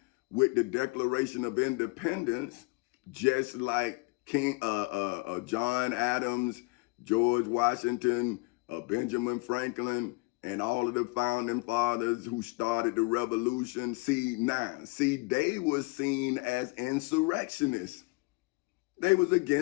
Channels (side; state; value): right; quieter; 26.6 dB